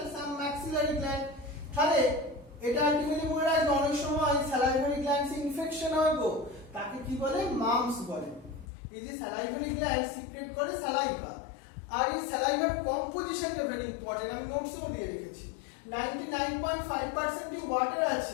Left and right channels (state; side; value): drops out; right; at 8.7 s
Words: সাম ম্যাক্সিলারি গ্ল্যান্ড। তাহলে এটা আলটিমেটলি মনে রাখবে, অনেক সময় স্যালাইভারি গ্ল্যান্ডস ইনফেকশন হয় গো, তাকে কি বলে, মামস বলে। এই যে স্যালাইভারি গ্ল্যান্ড সিক্রেট করে স্যালাইভা, আর এই স্যালাইভার কম্পোজিশনটা ভেরি ইম্পর্টেন্ট, আমি নোটসও দিয়ে রেখেছি। 99.5% ওয়াটার